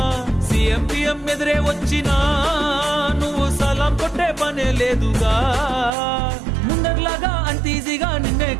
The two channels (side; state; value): left; drops out; at 5.9 s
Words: సీఎం పిఎం ఎదురే వచ్చినా నువ్వు సలాం కొట్టే పనే లేదుగా ముందర్లాగా అంత ఈజీగా నిన్నే